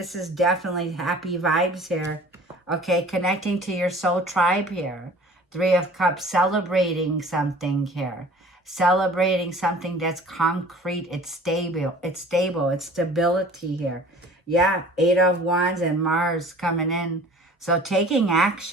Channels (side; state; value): both; normal; correlation 0.47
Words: is definitely happy vibes here. Okay, connecting to your soul tribe here. Three of Cups, celebrating something here. Celebrating something that's concrete. It's stable. It's stable. It's stability here. Yeah, Eight of Wands and Mars coming in. So taking